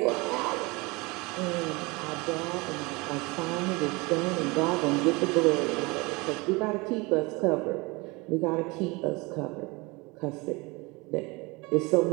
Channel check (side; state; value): left; quieter; 25.3 dB